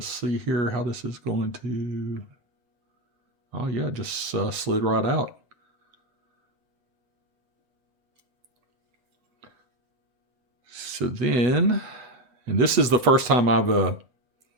see here how this is going to, oh yeah, just slid right out. So then, and this is the first time I've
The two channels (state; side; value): late; left; 8.1 ms